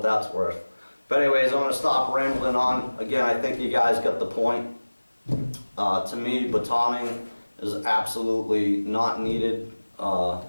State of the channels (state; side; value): inverted; both; correlation -1.00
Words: that's worth. But anyways, I'm going to stop rambling on. Again, I think you guys got the point. To me, batoning is absolutely not needed.